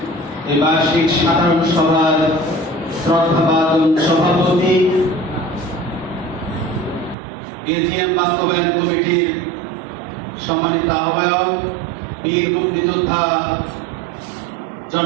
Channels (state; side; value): drops out; left; at 7.2 s